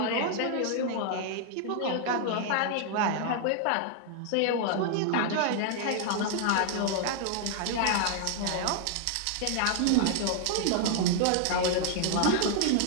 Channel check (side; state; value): both; different; correlation 0.00